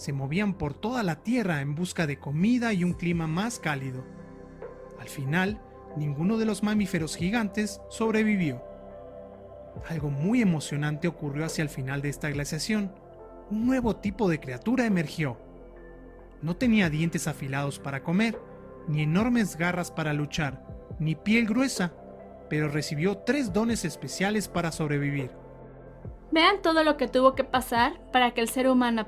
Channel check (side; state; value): both; identical; correlation 1.00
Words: movían por toda la Tierra en busca de comida y un clima más cálido. Al final, ninguno de los mamíferos gigantes sobrevivió. Algo muy emocionante ocurrió hacia el final de esta glaciación. Un nuevo tipo de criatura emergió. No tenía dientes afilados para comer, ni enormes garras para luchar, ni piel gruesa, pero recibió 3 dones especiales para sobrevivir. Vean todo lo que tuvo que pasar para que el ser humano